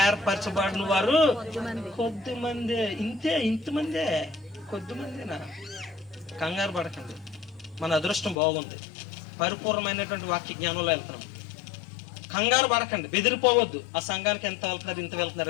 ఏర్పరచబడిన వారు కొద్దిమందే. ఇంతమందే, కొద్దిమందేనా? కంగారు పడకండి, మన అదృష్టం బాగుంది, పరిపూర్ణమైనటువంటి వాక్య జ్ఞానంలో వెళ్తున్నాం. కంగారు పడకండి, బెదిరిపోవద్దు. ఆ సంఘానికి ఎంత వెళ్తున్నారు, ఇంత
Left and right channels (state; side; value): drops out; right; at 8.3 s